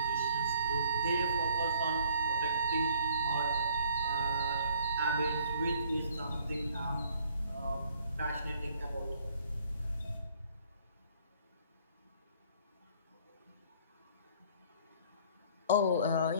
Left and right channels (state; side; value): inverted; both; correlation -0.58